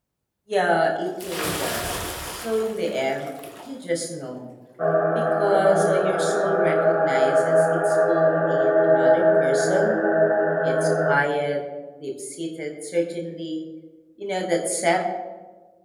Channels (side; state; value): both; identical; correlation 1.00